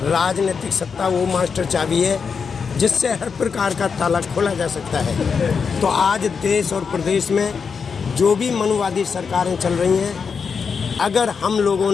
राजनीतिक सत्ता वो मास्टर चाबी है जिससे हर प्रकार का ताला खोला जा सकता है। तो आज देश और प्रदेश में जो भी मनुवादी सरकारें चल रही हैं, अगर हम लोगों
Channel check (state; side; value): quieter; right; 5.8 dB